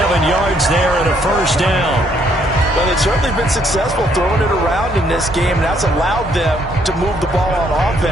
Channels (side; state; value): both; normal; correlation 0.69